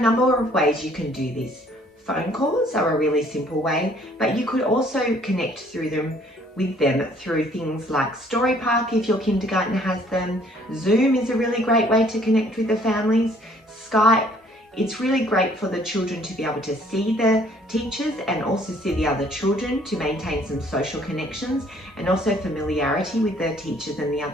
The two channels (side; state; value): both; normal; correlation 0.60